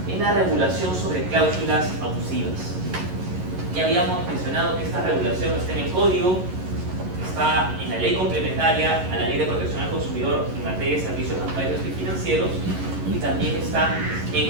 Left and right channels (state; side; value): late; left; 11 ms